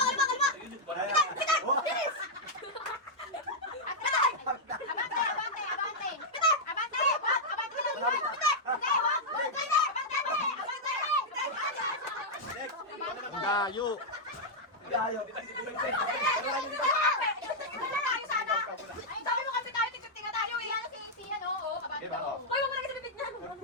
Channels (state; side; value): normal; both; correlation -0.05